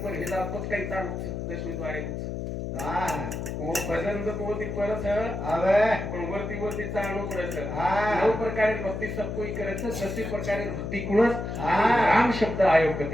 पर हे जावत काही ताळ 10वे द्वारे હા वो भजन जो कोती परस હવે पण वरती वरती चालणं परस हा 9 प्रकारे भक्ती सब कोई करे છે 10 प्रकारे भक्ती कुणस हा. राम शब्द आयोग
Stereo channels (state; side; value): noise; left; hum, 5 dB below the sound